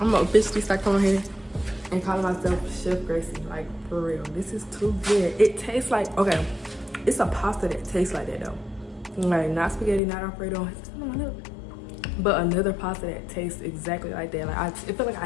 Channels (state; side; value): drops out; right; at 10.0 s